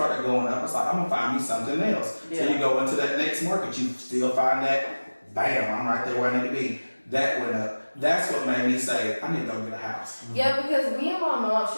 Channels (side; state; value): both; inverted; correlation -1.00